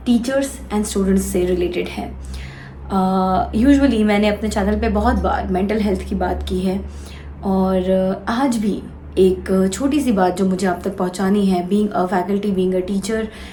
टीचर्स एंड स्टूडेंट्स से रिलेटेड है। यूजुअली मैंने अपने चैनल पे बहुत बार मेंटल हेल्थ की बात की है और आज भी एक छोटी सी बात जो मुझे आप तक पहुंचानी है, being a faculty, being a teacher,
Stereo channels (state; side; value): identical; both; correlation 1.00